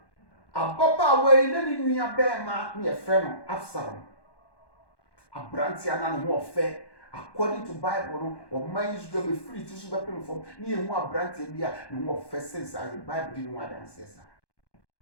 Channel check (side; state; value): right; late; 1.1 ms